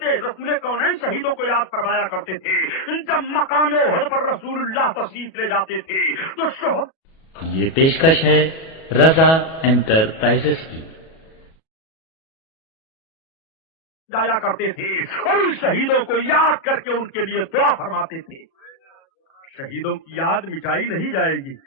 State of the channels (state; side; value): late; right; 37 ms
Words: رسول کونین شہیدوں کو یاد فرمایا کرتے تھے۔ جب مقام احد پر رسول اللہ تشریف لے جاتے تھے تو شہد یہ پیشکش ہے رضا انٹرپرائزز کی جایا کرتے تھے اور ان شہیدوں کو یاد کر کے ان کے لیے دعا فرماتے تھے۔ شہیدوں کی یاد مٹائی نہیں جائے گی۔